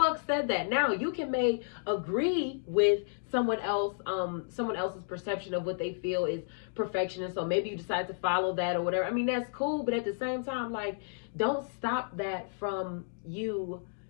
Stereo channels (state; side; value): silent; right; digital silence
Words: said that? Now you can agree with someone else's perception of what they feel is perfection. And so maybe you decide to follow that or whatever. I mean, that's cool. But at the same time, like, don't stop that from you